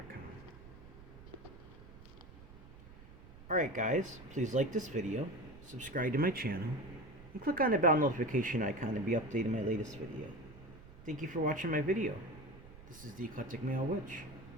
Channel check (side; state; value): right; noise; rumble, 18 dB below the sound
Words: Alright guys, please like this video, subscribe to my channel, and click on the bell notification icon to be updated on my latest video. Thank you for watching my video. This is the Eclectic Male Witch.